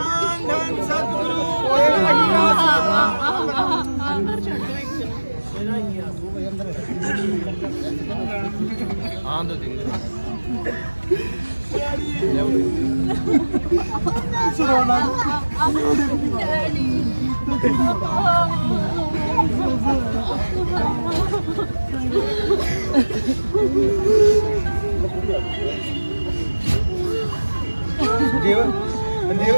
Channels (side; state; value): both; inverted; correlation -1.00